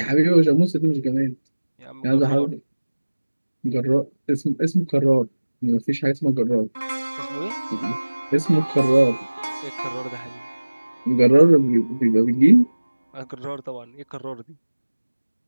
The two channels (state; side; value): inverted; both; correlation -1.00